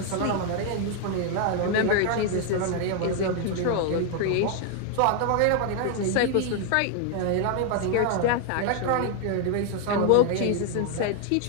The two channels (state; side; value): different; both; correlation 0.00